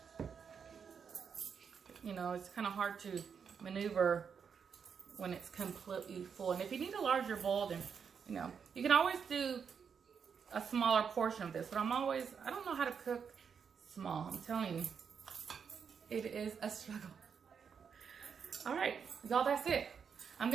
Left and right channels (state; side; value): quieter; left; 6.7 dB